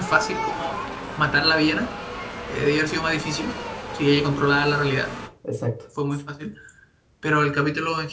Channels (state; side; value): identical; both; correlation 1.00